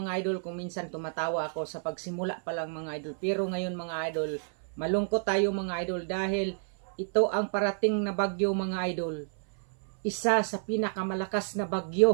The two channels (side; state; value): left; silent; 58 dB below the other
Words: idol, kung minsan tumatawa ako sa pagsimula pa lang mga idol. Pero ngayon mga idol, malungkot tayo mga idol dahil ito ang parating na bagyo mga idol. Isa sa pinakamalakas na